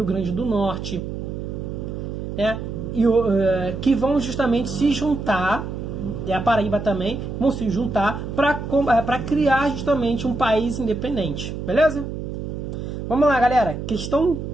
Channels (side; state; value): right; noise; hum, 6 dB below the sound